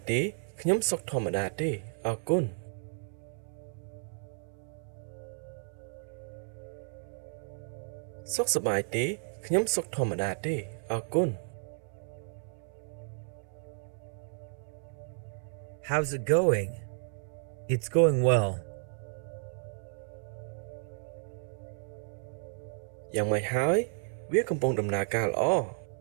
ទេខ្ញុំសុខធម្មតាទេអរគុណសុខសប្បាយទេខ្ញុំសុខធម្មតាទេអរគុណ How's it going? It's going well. យ៉ាងម៉េចហើយវាកំពុងដំណើរការល្អ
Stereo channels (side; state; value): left; silent; 56 dB below the other